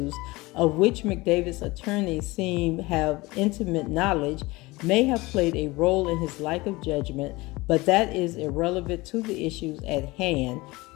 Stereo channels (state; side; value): quieter; right; 21.8 dB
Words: of which McDavid's attorneys seem have intimate knowledge, may have played a role in his lack of judgment, but that is irrelevant to the issues at hand.